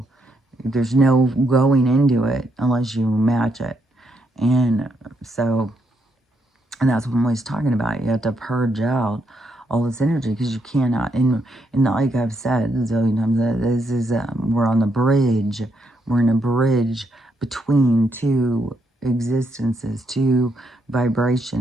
there's no going into it unless you match it. And so, and that's what I'm always talking about. You have to purge out all this energy because you cannot. And like I've said a zillion times, this is we're on the bridge. We're in a bridge between two existences, two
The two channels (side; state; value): both; normal; correlation 0.77